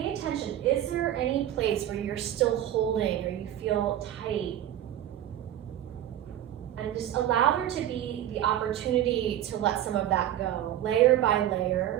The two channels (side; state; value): left; quieter; 12.0 dB